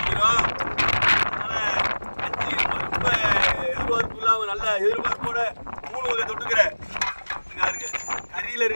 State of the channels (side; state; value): both; inverted; correlation -1.00